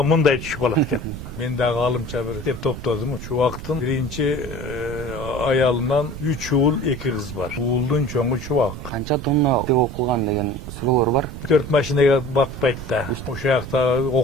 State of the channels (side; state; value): right; noise; rumble, 10 dB below the sound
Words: мындай түшүп калат экен. Мен дагы алымча бир деп топтодум. Чубактын биринчи аялынан 3 уул 2 кыз бар. Уулдун чоңу Чубак. Канча тонна окулган деген суроолор бар. 4 машинага бакпайт да. Ошол жакта